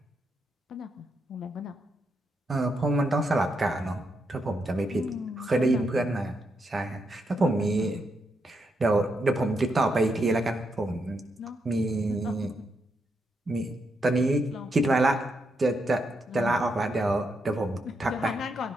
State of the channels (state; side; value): normal; both; correlation 0.81